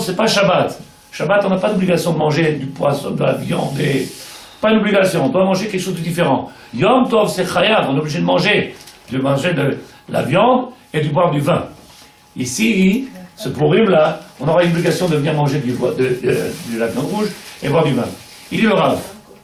c'est pas Shabbat. Shabbat, on n'a pas d'obligation de manger du poisson, de la viande. Pas une obligation, on doit manger quelque chose de différent. Yom Tov, c'est chayav, on est obligé de manger de la viande et de boire du vin. Ici, ce Purim-là, on aura une obligation de venir manger de la viande rouge et boire du vin. Il est le Rav.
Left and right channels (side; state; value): both; identical; correlation 1.00